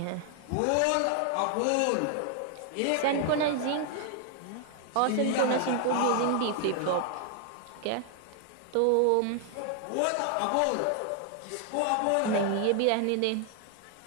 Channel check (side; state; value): both; different; correlation 0.00